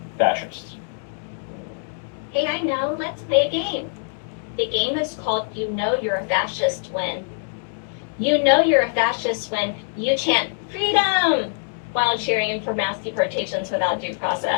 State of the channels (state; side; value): silent; right; digital silence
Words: fascists. Hey, I know. Let's play a game. The game is called You Know You're a Fascist When. You know you're a fascist when you chant freedom while cheering for mass deportations without due